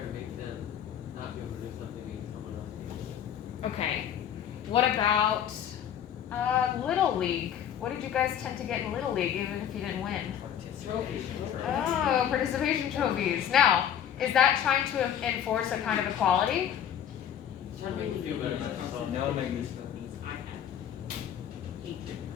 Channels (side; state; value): right; quieter; 9.4 dB